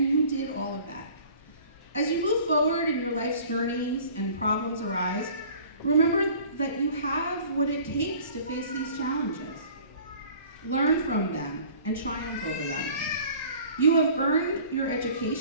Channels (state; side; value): inverted; both; correlation -0.48